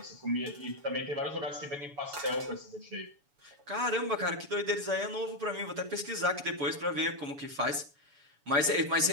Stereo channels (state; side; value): late; left; 7.1 ms